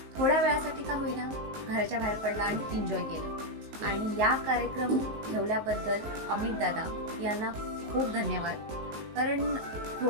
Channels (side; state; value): left; late; 19 ms